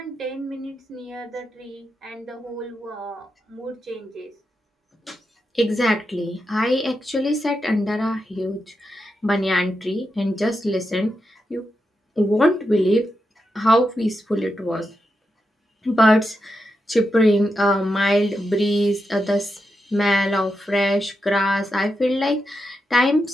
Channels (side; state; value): both; normal; correlation 0.86